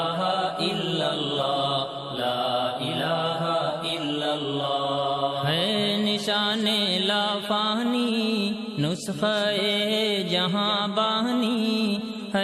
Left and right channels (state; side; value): identical; both; correlation 1.00